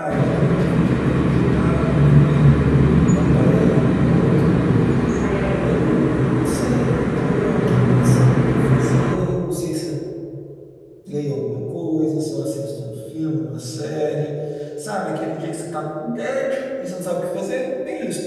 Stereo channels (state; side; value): identical; both; correlation 1.00